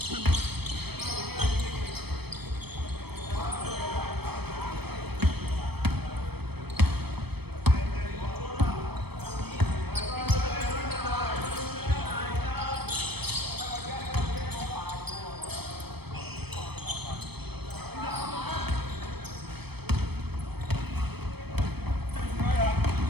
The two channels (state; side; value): late; left; 0.97 ms